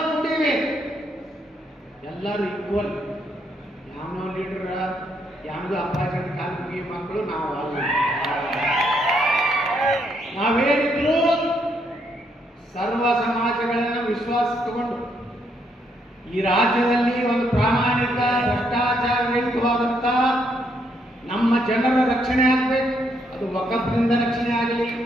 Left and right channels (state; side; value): normal; both; correlation 0.74